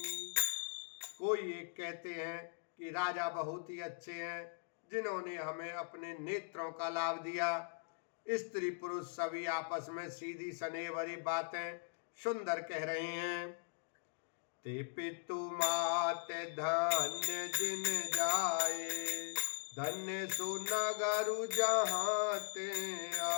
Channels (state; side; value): silent; right; digital silence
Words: कोई एक कहते हैं कि राजा बहुत ही अच्छे हैं जिन्होंने हमें अपने नेत्रों का लाभ दिया। स्त्री पुरुष सभी आपस में सीधी स्नेह भरी बातें सुंदर कह रहे हैं। ते पितु मात धन्य जिन जाए, धन्य सुनगरु जहाँ ते